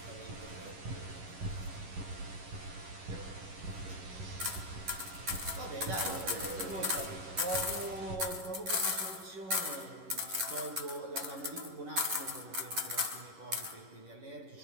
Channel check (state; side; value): late; left; 11 ms